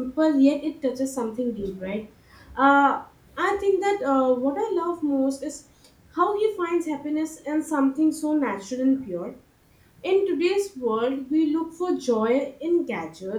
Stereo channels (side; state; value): both; identical; correlation 1.00